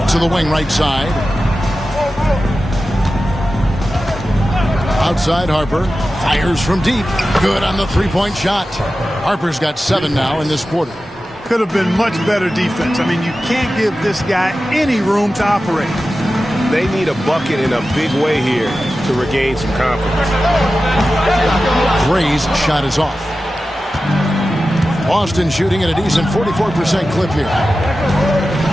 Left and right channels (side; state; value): both; normal; correlation 0.94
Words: To the wing right side. Outside Harper. Fires from deep. Good on the three-point shot. Harper's got 7 now in this quarter. Could have been much better defense. I mean, you can't give this guy any room to operate. They need a bucket in a big way here to regain some confidence. Gray's shot is off. Boston shooting at a decent 44% clip here.